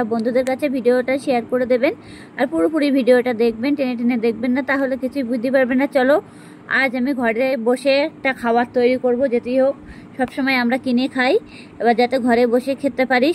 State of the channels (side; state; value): both; identical; correlation 1.00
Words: বন্ধুদের কাছে ভিডিওটা শেয়ার করে দেবেন। আর পুরোপুরি ভিডিওটা দেখবেন, টেনে টেনে দেখবেন না, তাহলে কিছুই বুঝতে পারবেন না। চলো, আজ আমি ঘরে বসে একটা খাবার তৈরি করব। যেতেই হোক, সবসময় আমরা কিনে খাই, এবার যাতে ঘরে বসে খেতে পারি